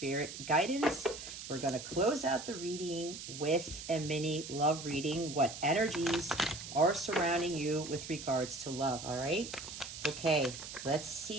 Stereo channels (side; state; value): right; noise; hiss, 10 dB below the sound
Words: guidance. We're going to close out the reading with a mini love reading, what energies are surrounding you with regards to love. All right. Okay, let's